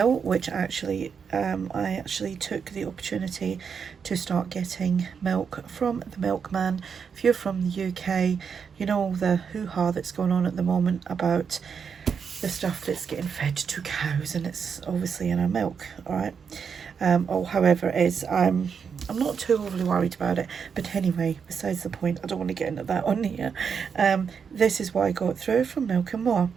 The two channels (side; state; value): left; quieter; 6.5 dB